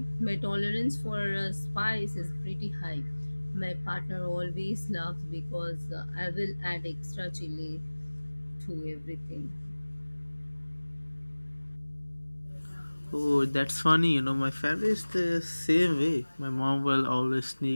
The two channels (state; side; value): inverted; both; correlation -1.00